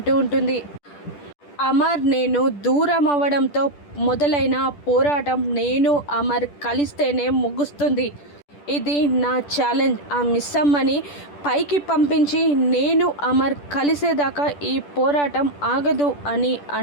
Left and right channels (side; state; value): right; late; 10 ms